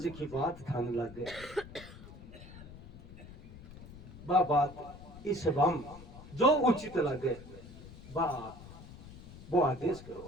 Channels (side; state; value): left; noise; rumble, 16 dB below the sound